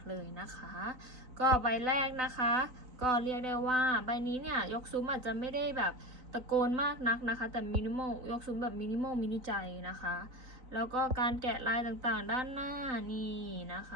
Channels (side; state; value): left; late; 3.9 ms